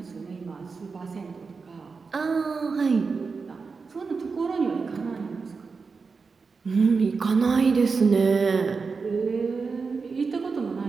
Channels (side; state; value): left; quieter; 4.8 dB